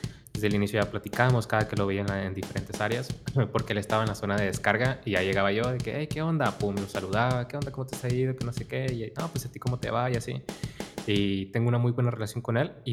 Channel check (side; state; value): both; identical; correlation 1.00